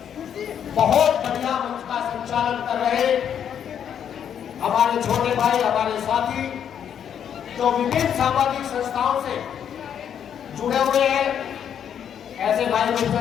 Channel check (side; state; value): right; quieter; 8.7 dB